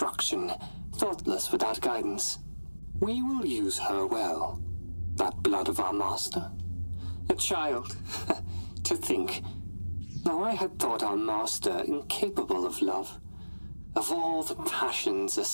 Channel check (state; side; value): inverted; both; correlation -1.00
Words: thoughtless without guidance. We will use her well. That blood of our master. A child. To think. Now I had thought our master incapable of love. Of all the passions a